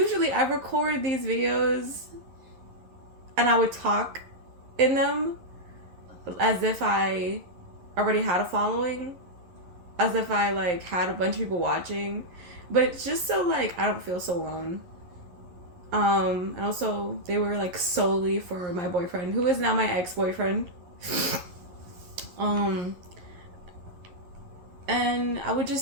I record these videos and I would talk in them as if I already had a following, as if I like had a bunch of people watching, but it's just so like I don't feel so alone. And also they were like solely for my boyfriend, who is now my ex-boyfriend. um, and I would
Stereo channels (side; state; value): left; late; 11 ms